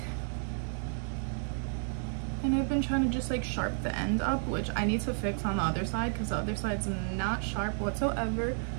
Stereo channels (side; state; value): left; silent; 57 dB below the other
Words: And I've been trying to just like sharp the end up, which I need to fix on the other side because the other side's not sharp whatsoever.